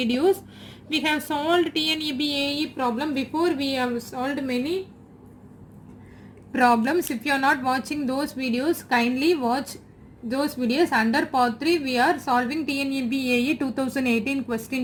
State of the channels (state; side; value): identical; both; correlation 1.00